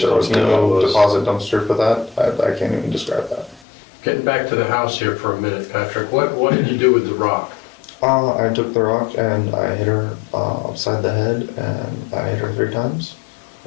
There was dumpster that no was? deposit dumpster for that. I can't even describe that. Getting back to the house here for a minute, Patrick, what did you do with the rock? I took the rock and I hit her upside the head and I hit her 3 times.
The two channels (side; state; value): right; drops out; at 3.7 s